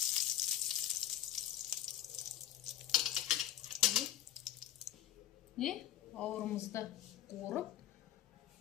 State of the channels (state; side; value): quieter; right; 11.8 dB